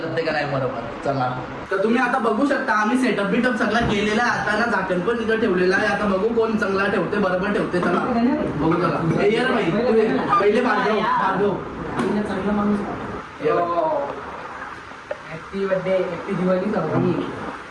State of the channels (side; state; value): both; identical; correlation 1.00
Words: का नाही बरोबर. चला, तर तुम्ही आता बघू शकता आम्ही सेटअप बिटअप सगळा केलेला आहे. आता ना झाकण पण इथं ठेवलेला आहे. आता बघू कोण चांगला ठेवते, बरोबर ठेवते. चला बघू. चला ये रे भाई, पहिले भार्गव. चांगला माणूस. Happy birthday, happy Diwali.